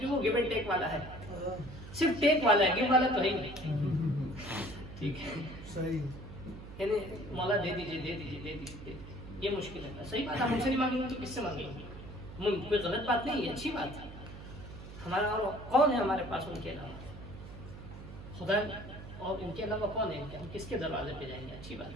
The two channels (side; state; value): right; noise; hum, 13 dB below the sound